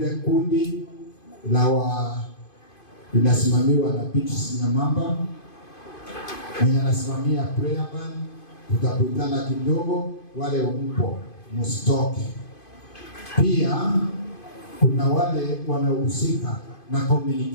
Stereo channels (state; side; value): late; right; 2.5 ms